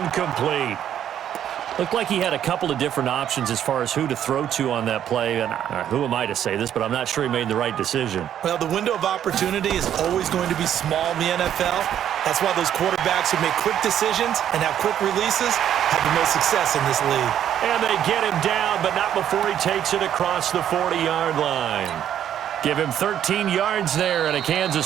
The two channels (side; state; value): left; quieter; 10.2 dB